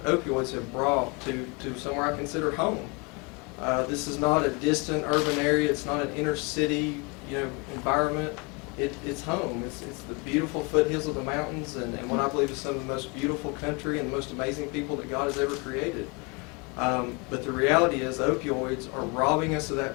have brought to somewhere I consider home. This is not a distant urban area. It's not an inner city, environment. It's home. It's the beautiful foothills of the mountains, and what I believe is some of the most beautiful country and the most amazing people that God has ever created. But the reality is, opioids are robbing us of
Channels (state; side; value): quieter; right; 29.9 dB